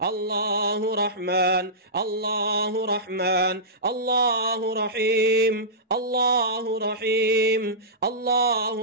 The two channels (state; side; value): normal; both; correlation -0.17